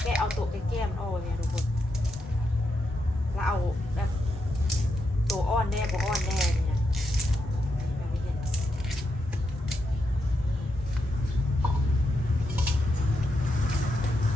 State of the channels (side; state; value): both; normal; correlation 0.83